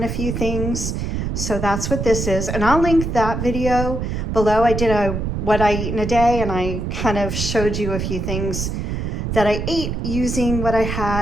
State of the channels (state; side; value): noise; right; rumble, 3 dB below the sound